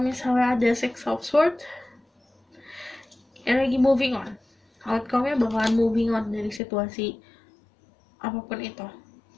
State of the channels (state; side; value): drops out; right; at 6.6 s